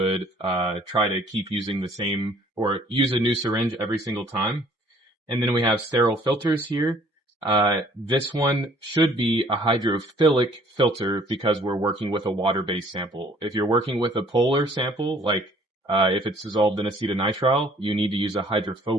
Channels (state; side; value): normal; both; correlation 0.58